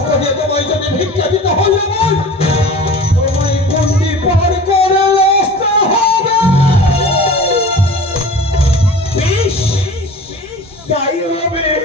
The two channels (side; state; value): both; normal; correlation 0.39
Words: দিয়ে তোমায় যদি ভিক্ষা দিতে হলে তোমায় গণ্ডি পার করে আসতে হবে। বেশ তাই হবে।